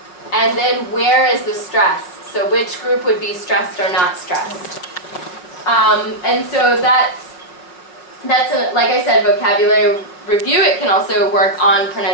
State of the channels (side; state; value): right; late; 5.6 ms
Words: And then where is the stress? So which group would be stressed or not stressed? And so that's like I said, vocabulary review. It can also work on